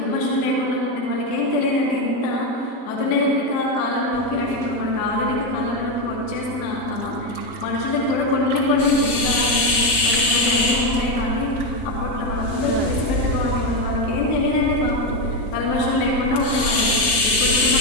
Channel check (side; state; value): right; late; 6.4 ms